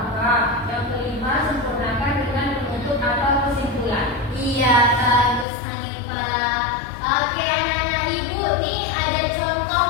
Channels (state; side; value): drops out; right; at 5.5 s